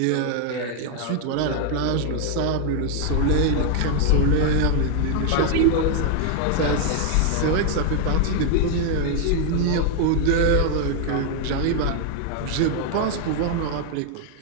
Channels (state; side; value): different; both; correlation 0.00